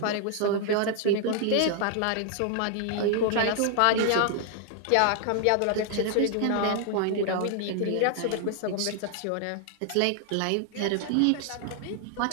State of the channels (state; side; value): different; both; correlation 0.00